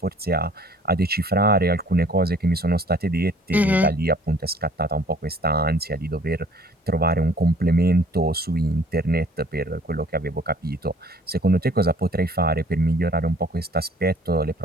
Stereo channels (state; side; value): normal; both; correlation 0.55